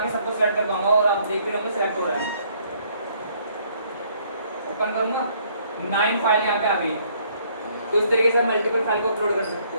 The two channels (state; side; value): inverted; both; correlation -0.65